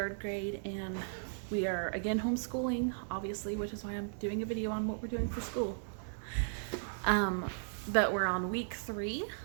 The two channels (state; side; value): silent; left; digital silence